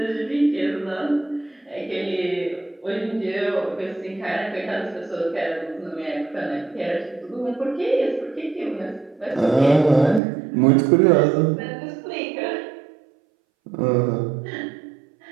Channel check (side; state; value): left; drops out; at 10.2 s